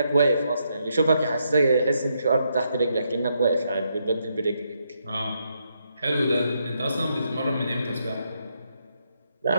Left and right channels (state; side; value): inverted; both; correlation -0.79